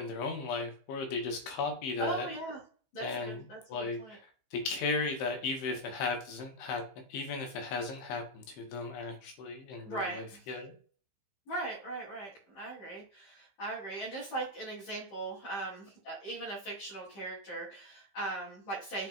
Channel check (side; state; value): right; late; 15 ms